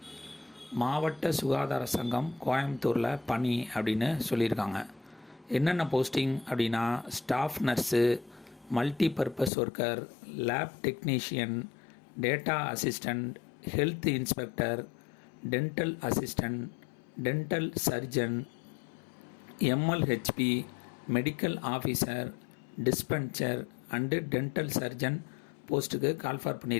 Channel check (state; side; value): drops out; right; at 9.5 s